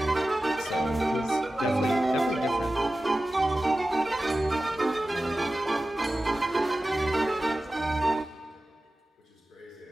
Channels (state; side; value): normal; both; correlation 0.95